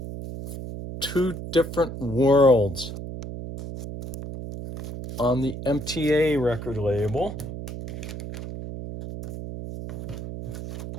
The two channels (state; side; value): noise; right; hum, 8 dB below the sound